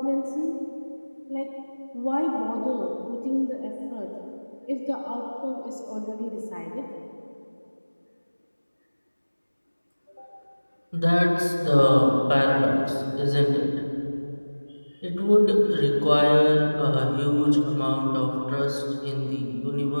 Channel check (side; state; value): both; inverted; correlation -1.00